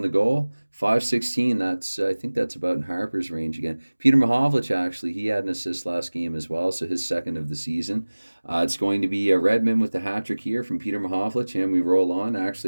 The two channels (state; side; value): inverted; both; correlation -1.00